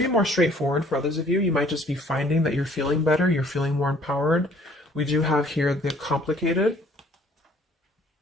more straightforward for others of you. You might just be finding that you're feeling better, you're feeling more empowered. We do have here the complicated.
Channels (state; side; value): normal; both; correlation 0.58